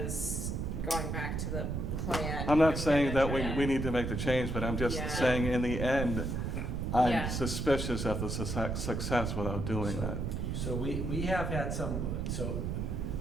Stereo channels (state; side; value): noise; right; rumble, 2 dB below the sound